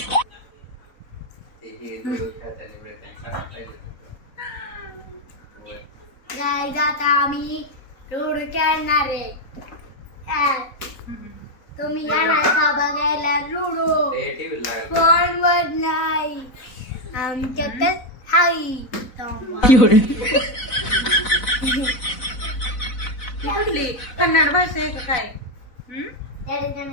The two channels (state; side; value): late; right; 4.0 ms